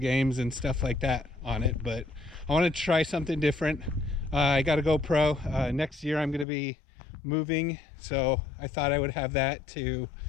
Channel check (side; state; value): right; drops out; at 6.5 s